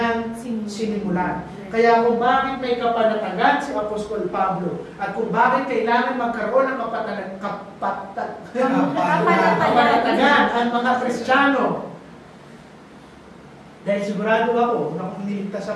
sinimulan. Kaya kung bakit may kapanatagan si Apostol Pablo at kung bakit kailangan magkaroon ng kapanatagan ang mga Kristiyano, dahil sigurado ako na kung iniligtas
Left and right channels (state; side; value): identical; both; correlation 1.00